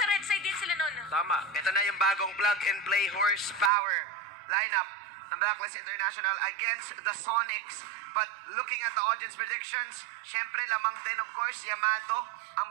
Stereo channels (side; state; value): left; drops out; at 3.7 s